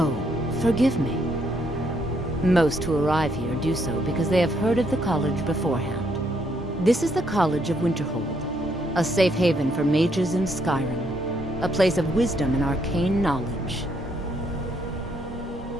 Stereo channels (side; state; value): both; normal; correlation 0.72